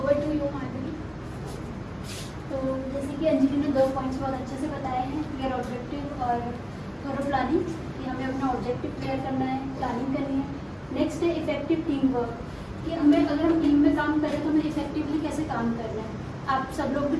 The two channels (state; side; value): identical; both; correlation 1.00